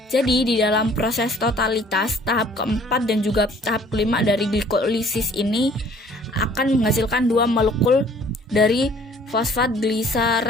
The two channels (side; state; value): both; normal; correlation 0.55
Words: Jadi di dalam proses totalitas tahap keempat dan juga tahap kelima dari glikolisis ini akan menghasilkan dua molekul dari fosfat